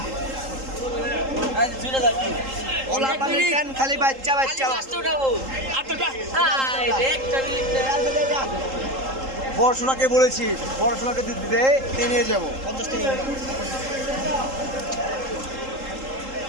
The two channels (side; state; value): left; late; 3.8 ms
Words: ওলা পানি কেন খালি বাচ্চা। পড়াশোনাকে বলেছি, পড়াশোনাকে দিতে নিয়ে যাবো। 50 টাকা।